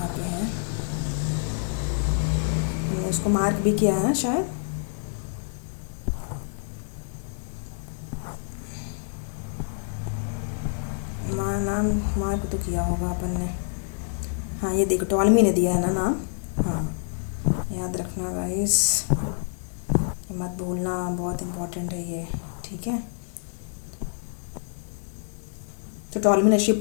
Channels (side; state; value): right; silent; digital silence